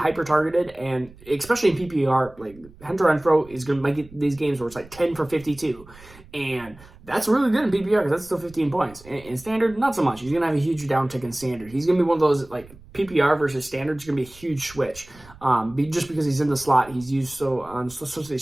and especially in PPR, like, Hunter Renfrow is going to make these games where it's like 10 for 52. And that's really good in PPR because that's still 15 points. In standard, not so much. He's going to have a huge downtick in standard. He's going to be one of those, like, PPR versus standard is going to be a huge switch. Just because he's in the slot, he's used so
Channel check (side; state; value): right; noise; rumble, 22 dB below the sound